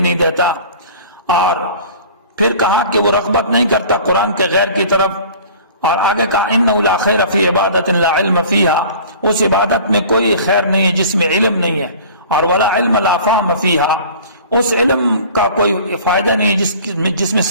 نہیں دیتا. اور پھر کہا کہ وہ رغبت نہیں کرتا قرآن کے غیر کی طرف. اور آگے کہا انہ لا خیر فی عبادت لا علم فیہا، اس عبادت میں کوئی خیر نہیں ہے جس میں علم نہیں ہے. اور ولا علم لا فہم فیہا، اس علم کا کوئی فائدہ نہیں جس میں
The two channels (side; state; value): both; inverted; correlation -0.44